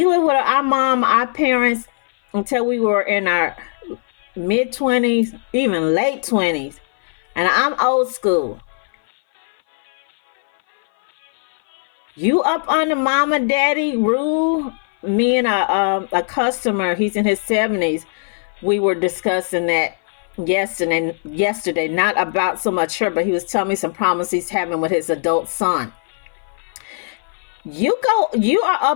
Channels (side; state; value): right; silent; 59 dB below the other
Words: lived with our mom, our parents, until we were in our mid-20s, even late 20s. And I'm old school. You up under mama daddy rule? Me and a customer, he's in his 70s, we were discussing that yesterday, not about so much her, but he was telling me some problems he's having with his adult son. You are